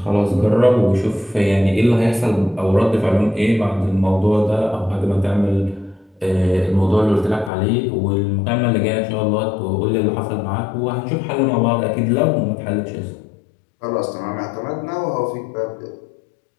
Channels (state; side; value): drops out; right; at 7.5 s